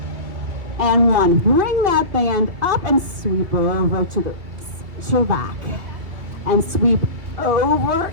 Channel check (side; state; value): left; late; 2.8 ms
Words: and 1. Bring that band up and sweep over to your back. And sweep over